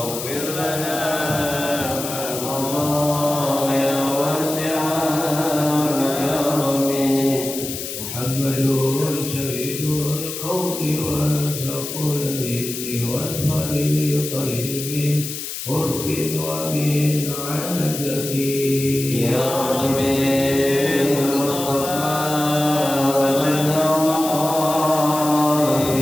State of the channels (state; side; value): noise; left; hiss, 7 dB below the sound